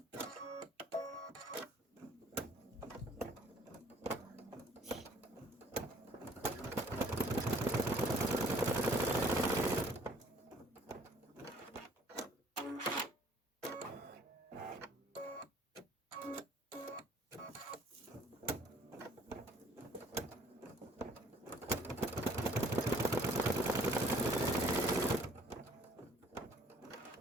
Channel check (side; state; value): both; normal; correlation 0.57